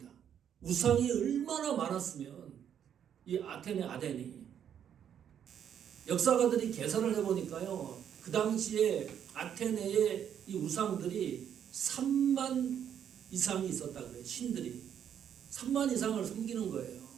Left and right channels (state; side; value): quieter; left; 9.0 dB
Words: 우상이 얼마나 많았으면 이 아테네 아덴이 역사가들이 계산을 해보니까요. 그 당시에 아테네의 이 우상들이 3만 이상이 있었다 그래요. 신들이 3만 이상을 섬기는 거예요.